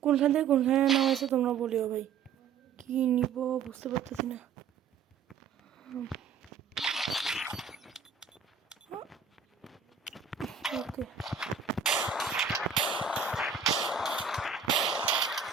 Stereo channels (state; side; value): quieter; left; 6.6 dB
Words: কোনখান থেকে কোনখানে নাম আছে তোমরা বলিও ভাই কী নিব বুঝতে পারতেছি না ওকে